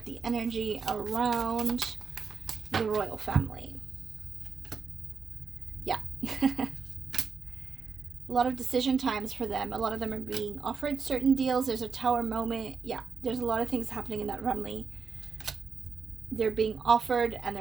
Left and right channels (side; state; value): left; quieter; 5.6 dB